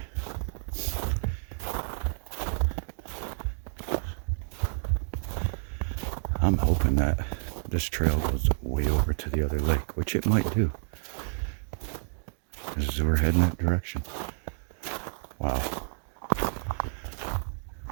I'm hoping that this trail goes way over to the other lake, which it might do. As we're heading that direction. Wow.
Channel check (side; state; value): left; silent; digital silence